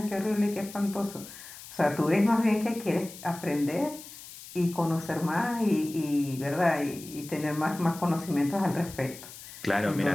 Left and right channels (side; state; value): left; noise; hiss, 15 dB below the sound